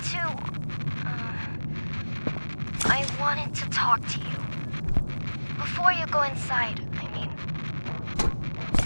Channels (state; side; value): inverted; both; correlation -1.00